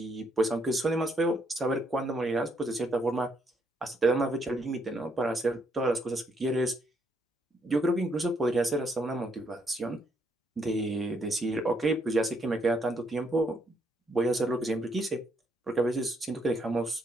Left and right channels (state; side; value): normal; both; correlation 0.73